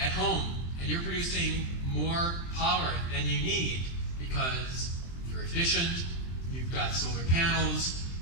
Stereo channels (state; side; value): late; right; 23 ms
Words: home and you're producing more power than you need because you're efficient, you've got solar panels,